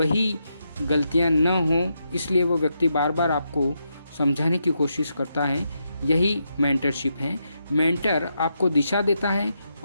गलतियां न हों, इसलिए वो व्यक्ति बार बार आपको समझाने की कोशिश करता है। यही मेंटरशिप है। मेंटर आपको दिशा देता है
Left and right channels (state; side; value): inverted; both; correlation -0.82